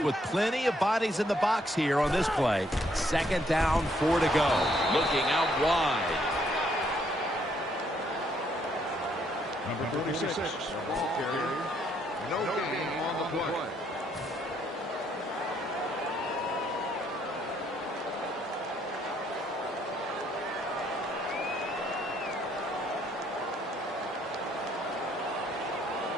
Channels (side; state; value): both; normal; correlation 0.70